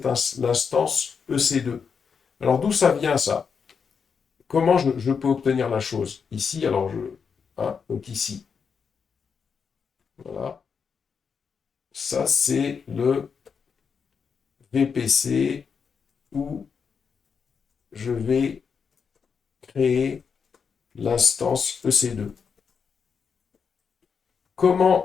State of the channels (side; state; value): right; quieter; 6.1 dB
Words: l'instance EC2. Alors d'où ça vient ça? Comment je peux obtenir la chose? Ici, alors hein, donc ici. Voilà. Ça, c'est le VPC où je vais créer l'instance EC2.